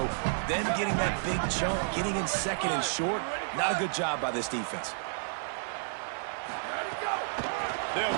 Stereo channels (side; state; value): left; silent; 56 dB below the other